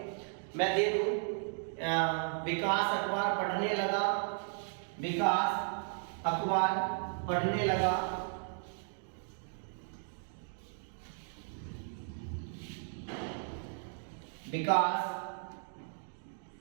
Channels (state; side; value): silent; left; 54 dB below the other